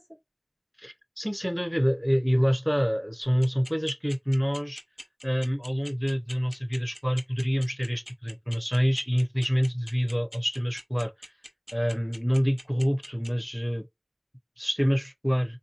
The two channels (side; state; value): both; identical; correlation 1.00